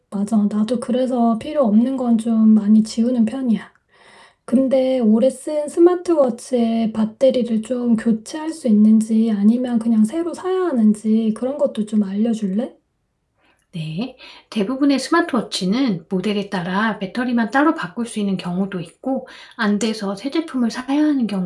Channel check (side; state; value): both; identical; correlation 1.00